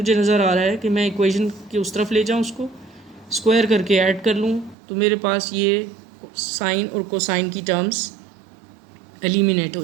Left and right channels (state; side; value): drops out; left; at 4.8 s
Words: नज़र आ रहा है कि मैं इक्वेशन की उस तरफ ले जाऊँ, उसको स्क्वायर करके ऐड कर लूँ, तो मेरे पास ये साइन और कोसाइन की टर्म्स एलिमिनेट हो